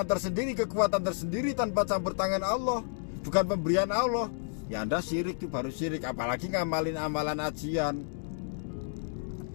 tersendiri, kekuatan tersendiri tanpa campur tangan Allah, bukan pemberian Allah, ya Anda syirik, itu baru syirik. Apalagi ngamalin amalan ajian.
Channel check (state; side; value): silent; right; digital silence